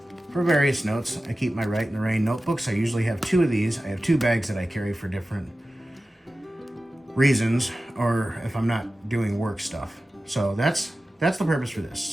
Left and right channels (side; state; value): both; normal; correlation 0.95